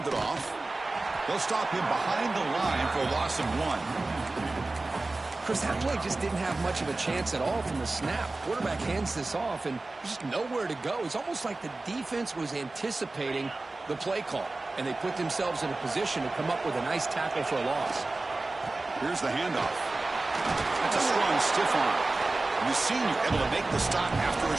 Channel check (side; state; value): left; quieter; 3.2 dB